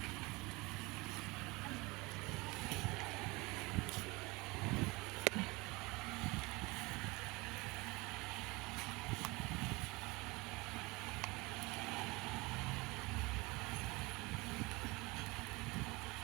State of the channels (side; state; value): left; quieter; 24.1 dB